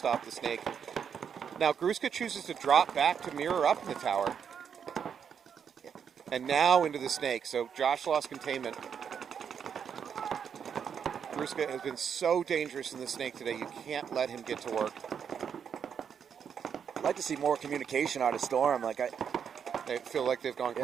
the snake. Now, Gruska chooses to drop back to mirror up in the tower. And now into the snake. So Josh lost containment. Gruska has been so dangerous in the snake today. You can't let him get to work. I'd like to see more communication out of Storm. They feel like they've gone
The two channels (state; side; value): quieter; left; 7.5 dB